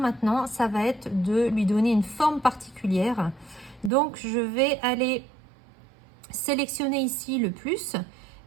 ça va être de lui donner une forme particulière. Donc, je vais aller sélectionner ici le plus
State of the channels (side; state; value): left; drops out; at 3.9 s